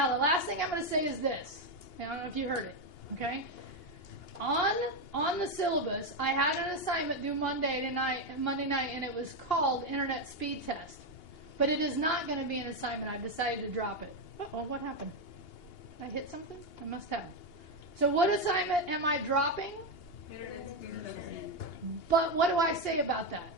the last thing I'm going to say is this. I don't know if you heard it. Okay? On the syllabus, I had an assignment due Monday night, and it was called Internet Speed Test. But it is not going to be an assignment. I've decided to drop it. Uh-oh, what happened? Did I hit something? I must have. So what assignment am I dropping? But what do I say about that?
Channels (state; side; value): late; right; 2.8 ms